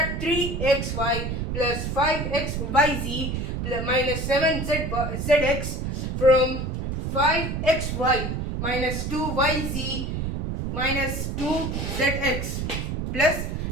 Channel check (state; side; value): noise; right; rumble, 3 dB below the sound